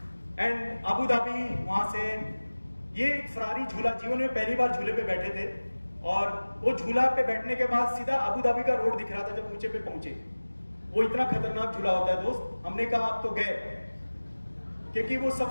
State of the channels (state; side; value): inverted; both; correlation -1.00